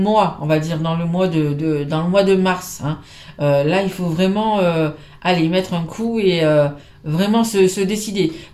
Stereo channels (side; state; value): both; identical; correlation 1.00